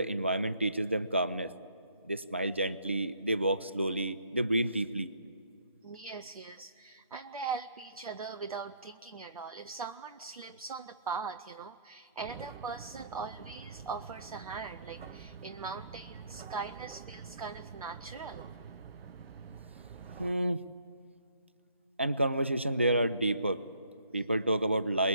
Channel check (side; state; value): both; inverted; correlation -0.66